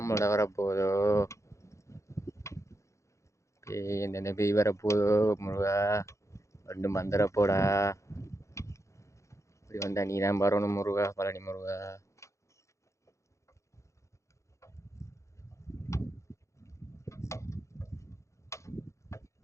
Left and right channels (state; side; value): late; right; 0.14 ms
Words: வரப்போதோ, பேய் எந்தெந்த பேய் வரப்போதோ முருகா ரெண்டு மந்திரப்போடா. இப்படி வந்தா நீ தான் வரணும் முருகா, பழனி முருகா.